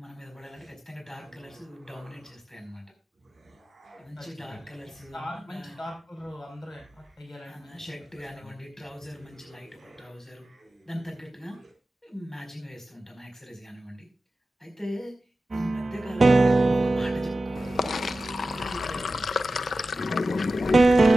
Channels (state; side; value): normal; both; correlation 0.95